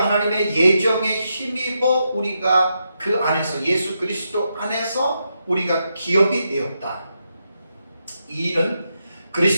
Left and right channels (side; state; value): both; inverted; correlation -0.84